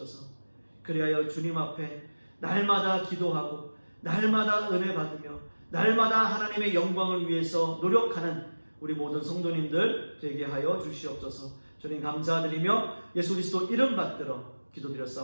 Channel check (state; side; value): inverted; both; correlation -1.00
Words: 그리하여 주님 앞에 날마다 기도하고 날마다 은혜 받으며 날마다 하나님의 영광을 위해서 노력하는 우리 모든 성도님들 되게 하여 주시옵소서. 주님 감사드리며 예수 그리스도 이름 받들어